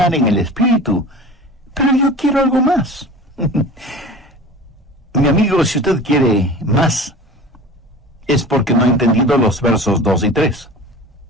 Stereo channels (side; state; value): both; normal; correlation 0.37